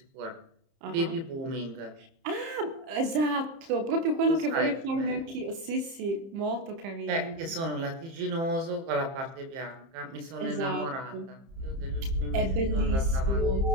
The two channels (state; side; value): late; left; 30 ms